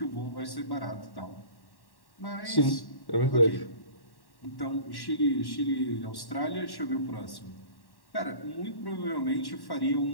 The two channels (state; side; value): late; right; 1.1 ms